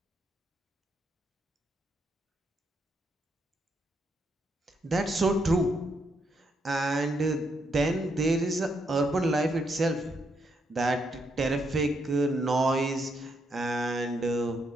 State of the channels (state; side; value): normal; both; correlation 0.78